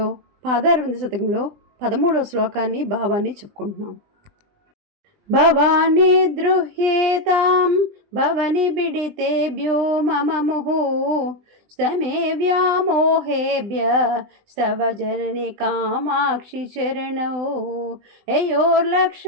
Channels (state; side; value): late; left; 20 ms